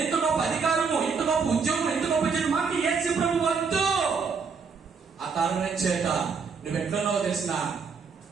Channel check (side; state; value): left; quieter; 5.4 dB